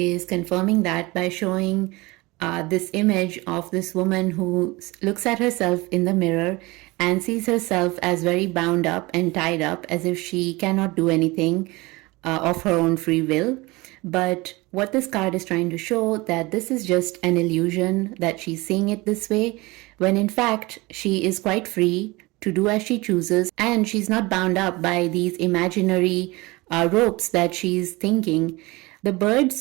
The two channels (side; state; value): left; quieter; 22.8 dB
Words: confirming that by showing this image of this woman who looks at herself in the mirror and sees herself as very bound up and tied up, as if she cannot do anything of her own free will. But what this card is trying to show, that this is just an illusion, that she's seeing it this way, when in fact she is quite free to do as she chooses, and she's not bound up by these imaginary ropes that she's thinking. The